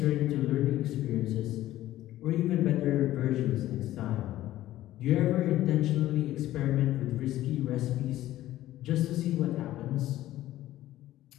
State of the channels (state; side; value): quieter; right; 14.5 dB